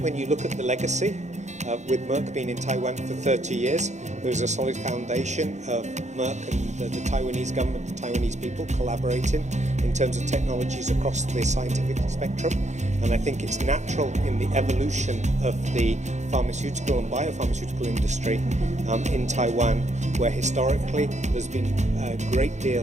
you look at the legacy, with Merck being in Taiwan for 30 years, there's a solid foundation of Merck and the Taiwanese government, the Taiwanese people collaborating in terms of technologies across the scientific spectrum. And I think it's natural in the evolution of the pharmaceutical and biopharmaceutical industry in Taiwan, where historically there's been a great deal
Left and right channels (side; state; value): left; late; 0.34 ms